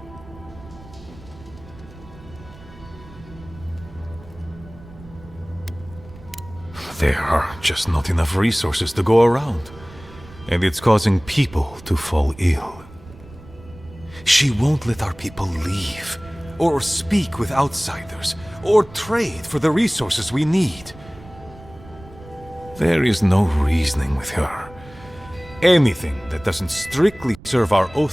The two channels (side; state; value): right; noise; rumble, 20 dB below the sound